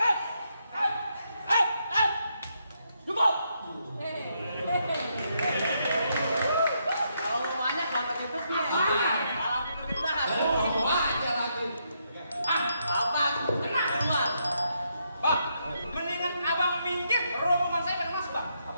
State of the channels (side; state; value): both; inverted; correlation -0.78